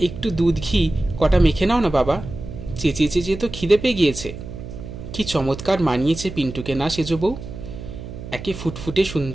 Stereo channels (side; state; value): right; noise; hum, 11 dB below the sound